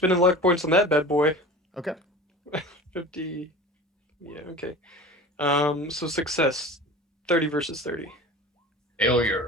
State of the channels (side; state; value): both; normal; correlation 0.37